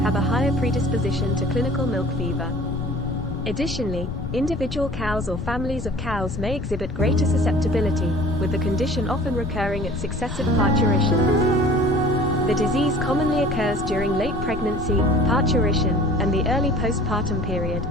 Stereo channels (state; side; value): noise; left; rumble, 6 dB below the sound